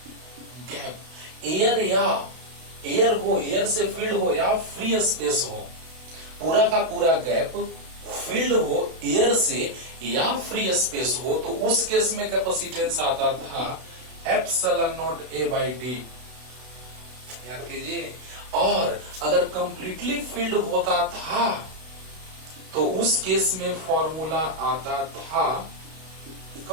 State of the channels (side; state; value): left; late; 32 ms